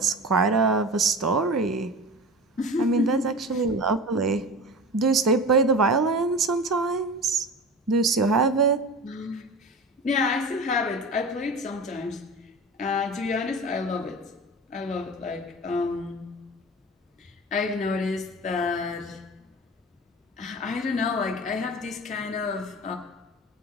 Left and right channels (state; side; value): normal; both; correlation 0.32